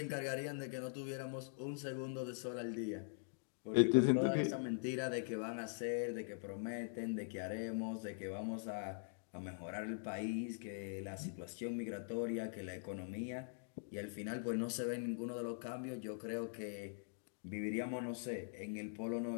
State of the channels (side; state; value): right; silent; digital silence